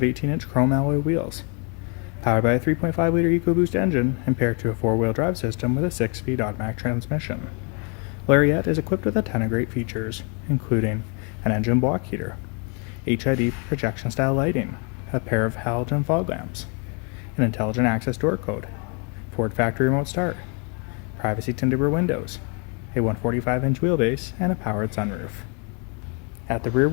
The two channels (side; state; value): right; quieter; 35.9 dB